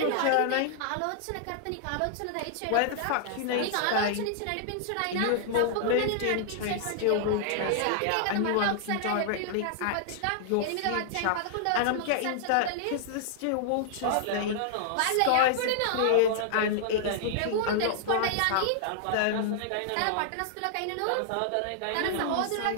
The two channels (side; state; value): both; different; correlation -0.01